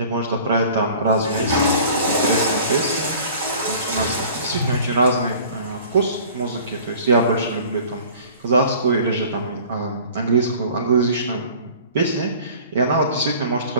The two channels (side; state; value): both; inverted; correlation -0.47